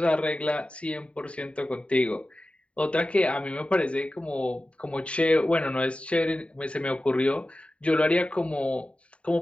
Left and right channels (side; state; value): right; late; 0.062 ms